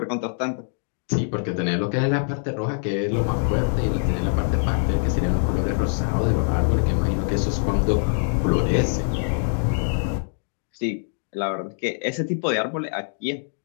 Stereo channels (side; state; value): right; silent; digital silence